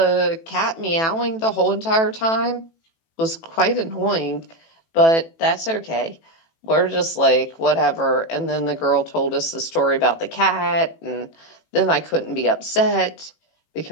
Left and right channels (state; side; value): late; right; 18 ms